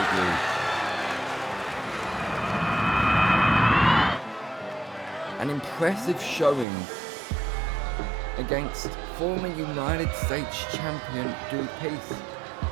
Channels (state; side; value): drops out; left; at 6.7 s